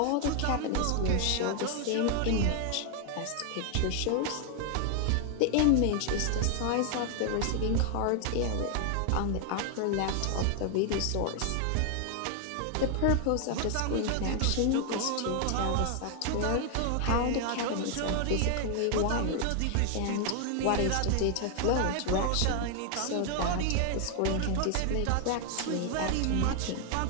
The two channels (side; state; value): both; different; correlation 0.00